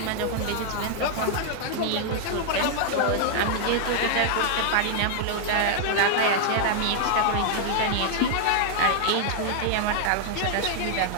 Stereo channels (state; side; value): different; both; correlation 0.00